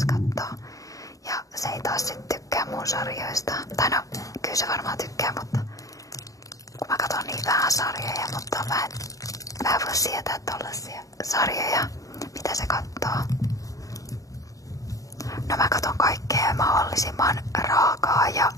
katsoo. Ja se ei taas sit tykkää mun sarjoista. Tai no, kyllä se varmaan tykkää, mutta kun mä katson niin vähän sarjoja, mutta mä en voi sietää tollasia sarjoja, mitä se kattoo. No mä katon kaikkea mahdollisimman raakaa ja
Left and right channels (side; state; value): right; late; 0.16 ms